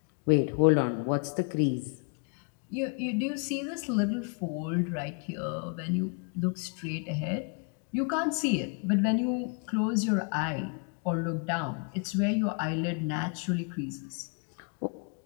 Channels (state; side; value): quieter; right; 37.7 dB